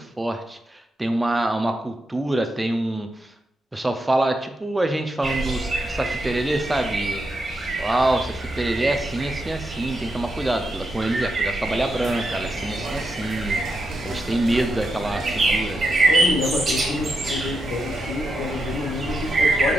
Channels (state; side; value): normal; both; correlation 0.85